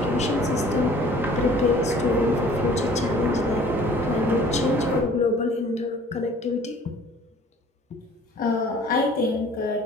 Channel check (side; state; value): both; normal; correlation 0.51